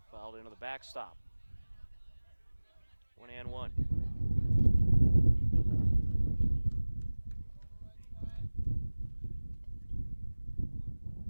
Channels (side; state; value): both; inverted; correlation -1.00